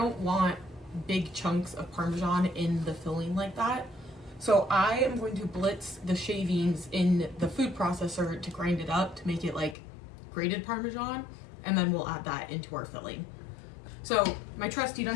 want big chunks of Parmesan in the filling like that. So I am going to blitz the shavings in the food processor to grind it up to make it like grated Parmesan, and then we'll add that into our filling. So my trusty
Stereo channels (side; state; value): right; drops out; at 9.8 s